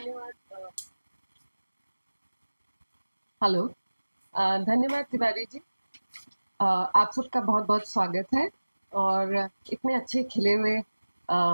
हेलो, धन्यवाद तिवारी जी। आप सबका बहुत बहुत स्वागत है और इतने अच्छे खिले हुए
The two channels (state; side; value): inverted; both; correlation -1.00